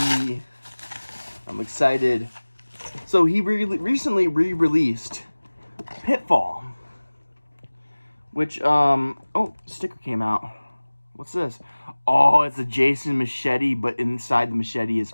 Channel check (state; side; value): inverted; both; correlation -1.00